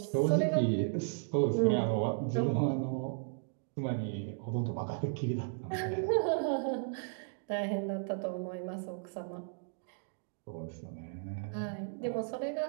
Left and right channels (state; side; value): silent; left; digital silence